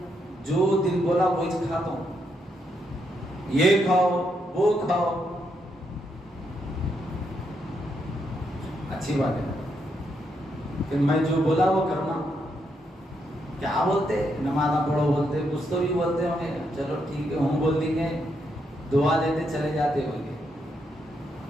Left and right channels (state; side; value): normal; both; correlation 0.79